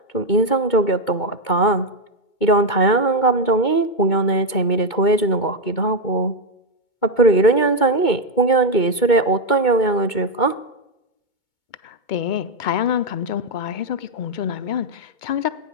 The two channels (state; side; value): late; right; 2.2 ms